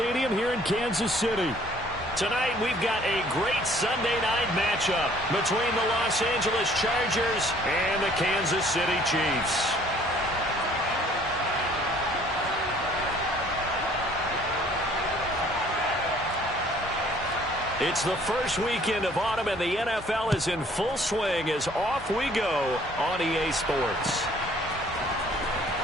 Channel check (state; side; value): normal; both; correlation 0.57